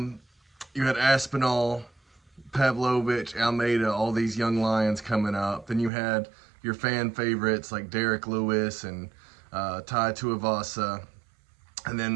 had Aspinall, Pavlovich, Almeida, all these young lions coming up. Then you had your fan favorites like Derek Lewis and Tai Tuivasa, and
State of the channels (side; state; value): left; drops out; at 5.9 s